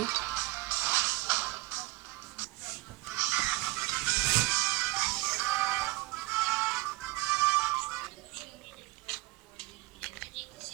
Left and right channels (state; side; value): quieter; left; 20.5 dB